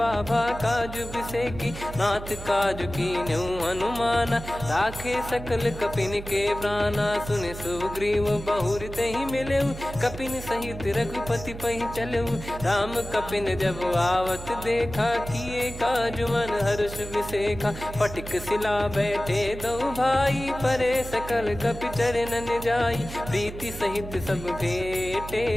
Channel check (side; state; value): right; noise; hum, 11 dB below the sound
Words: भा काज बिसेकी। नाथ काज कीन्हु हनुमाना राखे सकल कपिन के प्राणा। सुन सुग्रीव बहुर तेहि मिलेउ कपिन सहित रघुपति पहि चलेउ। राम कपिन जब आवत देखा किए काज मन हर्ष विसेखा। फटिक सिला बैठे दो भाई परे सकल कपि चरणन जाई। प्रीति सहित सब भेटे